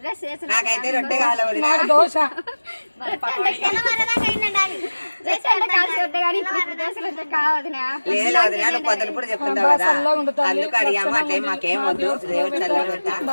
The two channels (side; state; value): both; inverted; correlation -1.00